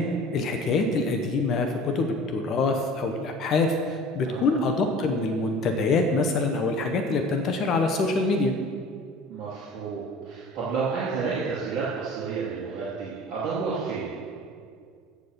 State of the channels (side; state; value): both; normal; correlation 0.43